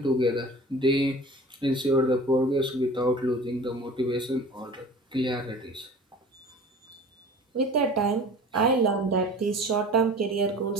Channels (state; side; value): normal; both; correlation 0.41